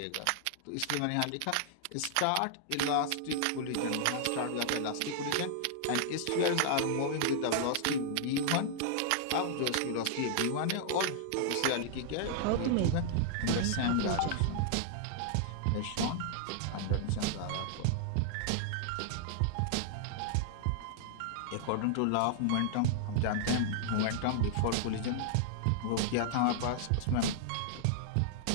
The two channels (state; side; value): different; both; correlation -0.01